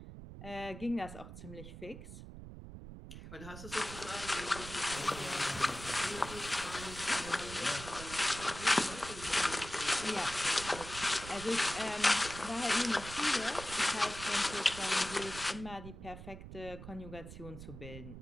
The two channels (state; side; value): noise; right; rumble, 12 dB below the sound